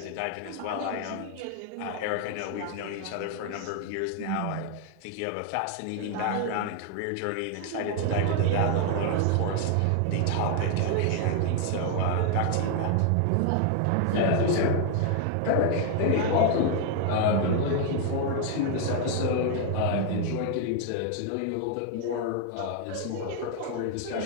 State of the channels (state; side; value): different; both; correlation 0.00